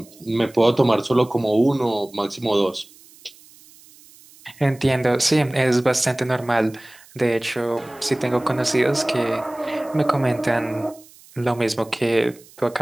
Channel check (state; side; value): noise; right; hiss, 25 dB below the sound